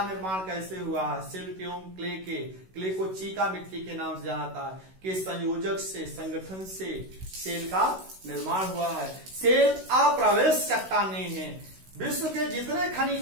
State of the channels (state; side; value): late; left; 16 ms